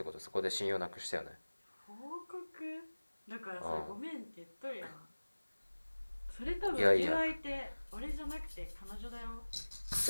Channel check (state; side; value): inverted; both; correlation -1.00